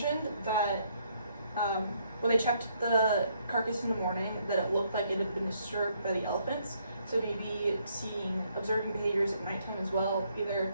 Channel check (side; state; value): both; inverted; correlation -0.70